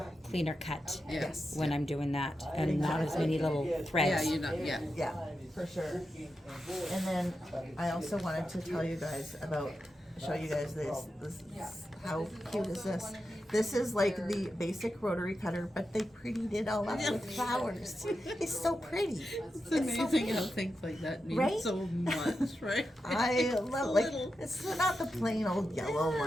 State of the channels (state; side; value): normal; both; correlation 0.89